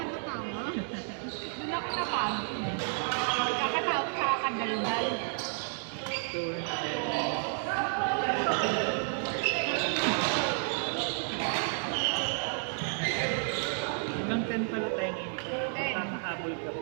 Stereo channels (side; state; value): left; silent; 57 dB below the other